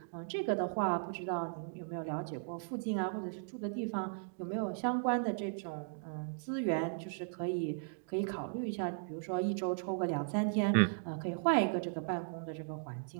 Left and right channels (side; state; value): left; silent; digital silence